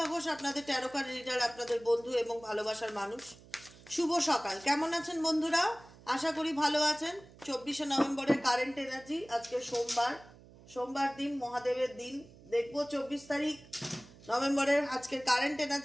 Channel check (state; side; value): noise; right; hum, 22 dB below the sound